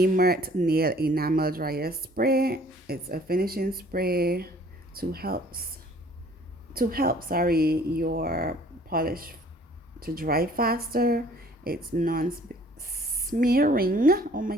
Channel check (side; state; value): both; normal; correlation 0.55